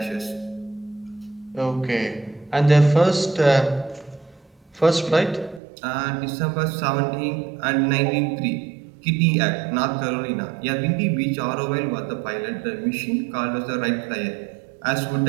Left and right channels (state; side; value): drops out; left; at 5.6 s